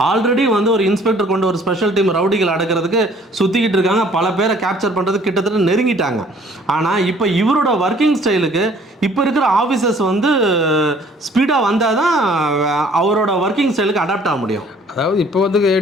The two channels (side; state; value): both; normal; correlation 0.57